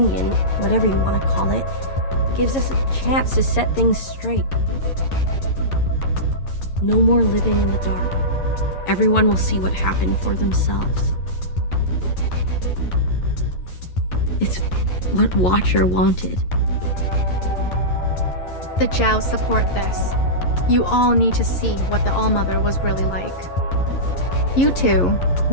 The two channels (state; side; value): late; right; 11 ms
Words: whatever you want to call it, gives us a chance to set things straight. No more living in the dark. Everyone will see what happened for themselves. It's what Watcher wanted. The Jows support this. You all need to see what the ALLMOTHER was really like. You too,